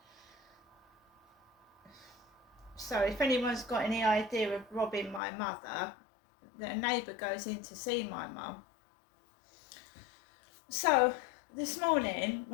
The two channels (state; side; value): drops out; right; at 5.2 s